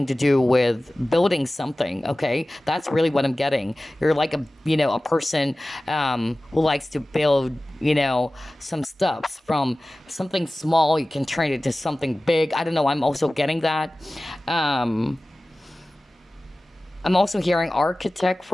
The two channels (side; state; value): both; normal; correlation 0.97